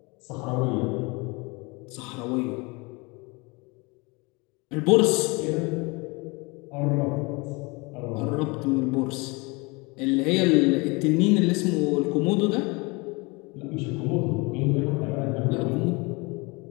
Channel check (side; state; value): right; quieter; 27.2 dB